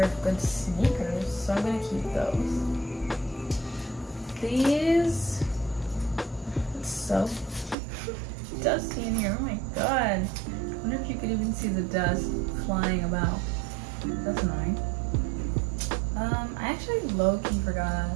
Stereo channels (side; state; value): left; drops out; at 7.8 s